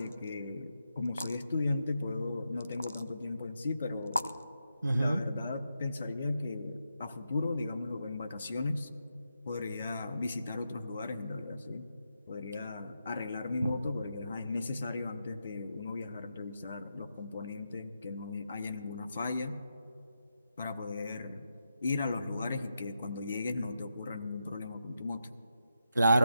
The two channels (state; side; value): inverted; both; correlation -0.85